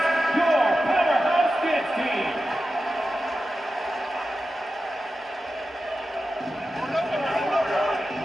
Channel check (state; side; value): normal; both; correlation 0.92